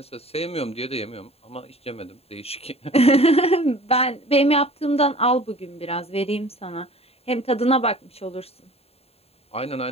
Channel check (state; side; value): late; right; 0.29 ms